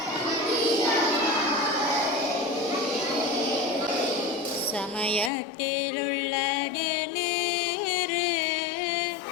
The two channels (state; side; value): drops out; right; at 5.3 s